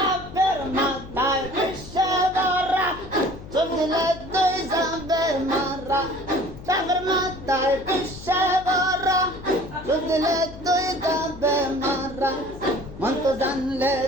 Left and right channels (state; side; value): noise; left; hum, 15 dB below the sound